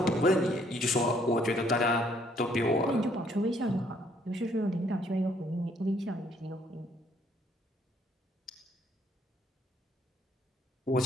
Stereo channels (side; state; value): both; normal; correlation 0.66